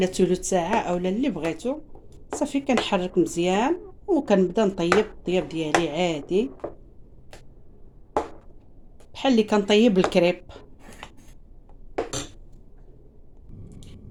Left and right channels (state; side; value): identical; both; correlation 1.00